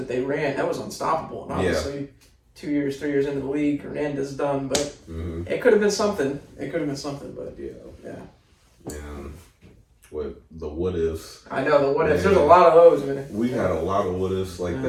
they ran, that was unstoppable. And obviously, 3 years into the league, Hernandez done, but it could have been something. But yeah. With the what ifs. I know the what ifs. There's a lot of those, man. We had a lot of what ifs like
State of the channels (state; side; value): identical; both; correlation 1.00